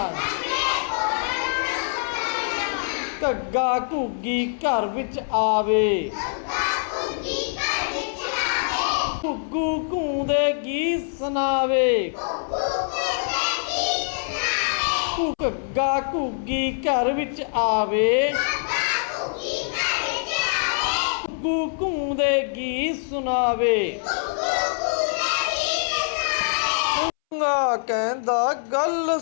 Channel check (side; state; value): right; silent; 62 dB below the other